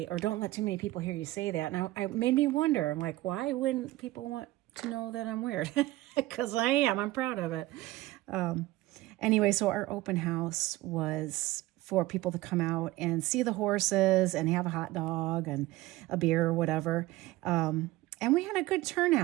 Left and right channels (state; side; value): quieter; left; 17.9 dB